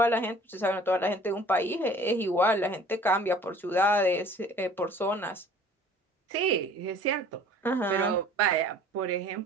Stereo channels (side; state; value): both; normal; correlation 0.50